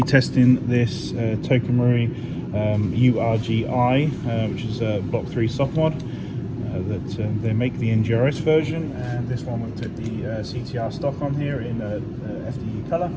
testing this Tokamori URGI, which is a Block 3 soft mod that they make the NGRS version, and this one we've took the CTR Stock on here in FDE colour,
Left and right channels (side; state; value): both; identical; correlation 1.00